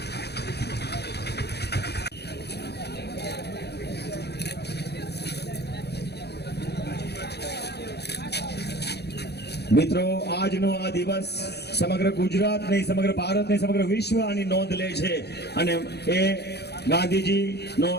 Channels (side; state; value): right; late; 0.48 ms